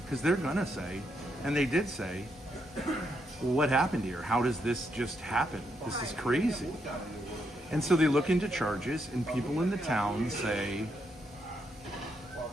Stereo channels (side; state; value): both; normal; correlation 0.79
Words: Because they're gonna say, and they did say, well, what happened here? How does this just happen? This is crazy. And so they look into charges, and people in the town say,